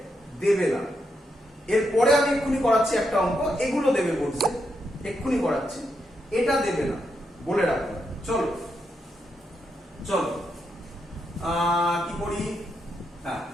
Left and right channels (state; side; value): normal; both; correlation 0.82